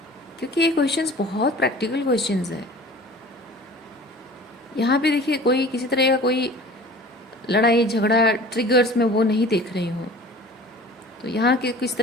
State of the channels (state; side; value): normal; both; correlation 0.44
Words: क्योंकि ये क्वेश्चंस बहुत प्रैक्टिकल क्वेश्चंस हैं। यहाँ पे देखिए, कोई किसी तरह का कोई लड़ाई झगड़ा ट्रिगर्स में वो नहीं देख रही हूँ। तो यहाँ के किस